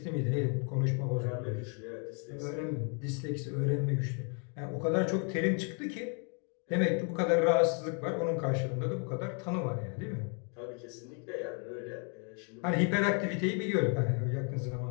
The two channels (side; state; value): right; quieter; 39.1 dB